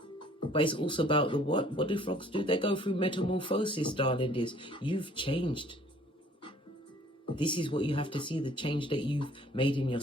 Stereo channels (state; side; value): normal; both; correlation 0.56